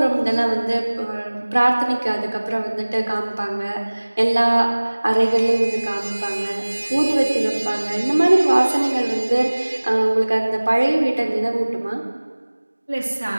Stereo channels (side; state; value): both; inverted; correlation -1.00